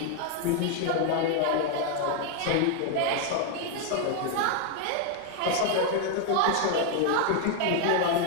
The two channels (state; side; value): different; both; correlation 0.00